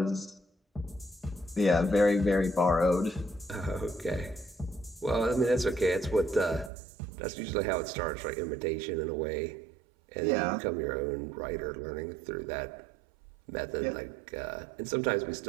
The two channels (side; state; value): left; drops out; at 6.7 s